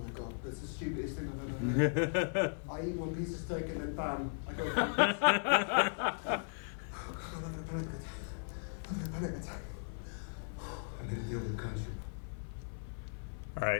god, that's the stupidest thing I've ever heard. I eat one piece of steak and then bam, I go. Oh god, I'm having a panic attack. I'm having a panic attack. I'm gonna deal with Khonshu. All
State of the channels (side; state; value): right; silent; 53 dB below the other